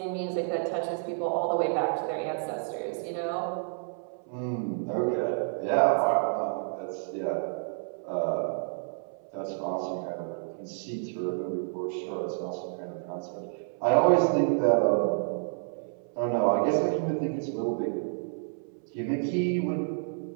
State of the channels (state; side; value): silent; left; 58 dB below the other